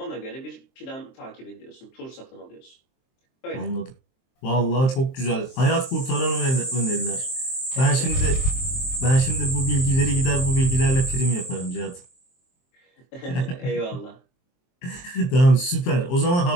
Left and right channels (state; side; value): late; right; 23 ms